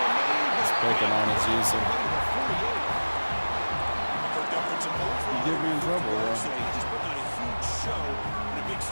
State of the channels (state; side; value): inverted; both; correlation -1.00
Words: He's picking on his user. You get me in trouble, though. He just put on a huge show in a big